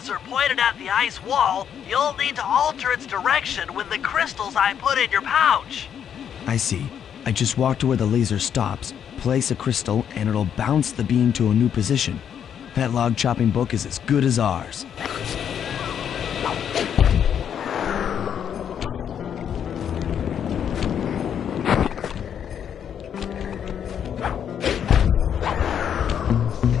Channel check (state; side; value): quieter; right; 8.6 dB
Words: pointed at the ice wall, you'll need to alter its direction with the crystals I put in your pouch. I see. I just walk to where the laser stops, place a crystal, and it'll bounce the beam to a new position. That log chopping book is as good as ours.